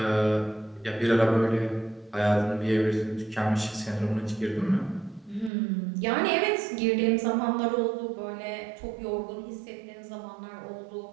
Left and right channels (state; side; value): drops out; left; at 5.5 s